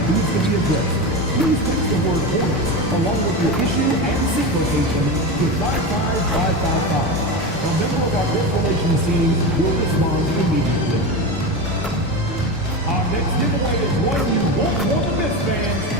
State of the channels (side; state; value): both; normal; correlation 0.21